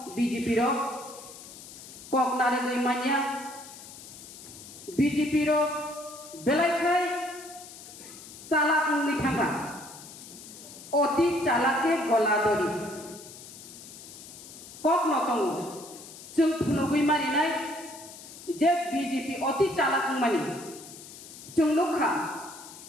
बीजेपी रो ककनारे गई मानिया बीजेपी रो बेलायखाय चालाक उंगै थांगा अति चालाके गलादरी कक नतंगो जों फुनुगै मारिनाय जे बीजेपी अति चालाक मानि जों नुखा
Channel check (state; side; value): noise; left; hiss, 16 dB below the sound